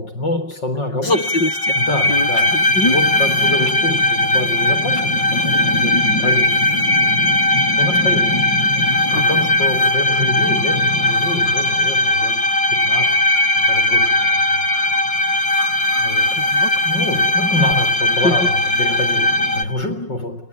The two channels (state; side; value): late; right; 5.5 ms